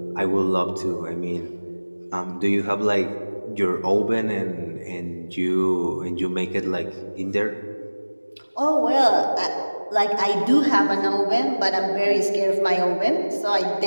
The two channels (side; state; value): both; inverted; correlation -1.00